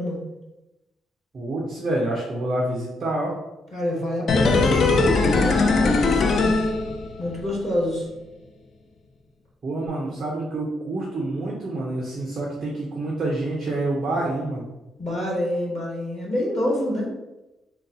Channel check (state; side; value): normal; both; correlation 0.77